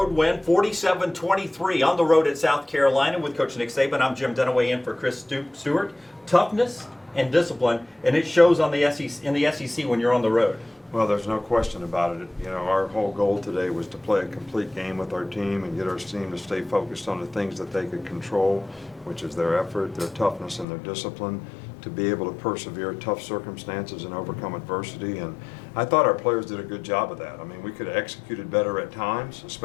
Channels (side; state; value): right; drops out; at 20.7 s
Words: win, 47-23 on the road at South Carolina with Coach Nick Saban. I'm Jim Dunaway in for Chris Stewart. Toughness and discipline, and it shows on the SEC, in the SEC when you're on the road. Well, there's no question about it. You know, our whole goal today was to play a complete game with our team and get our team to stay focused on the things that they could control, which is their effort, their toughness, and their discipline, to be able to persevere tough circumstances and overcome adversity. And I thought our players did a good job of that. I mean, we could have executed better at times,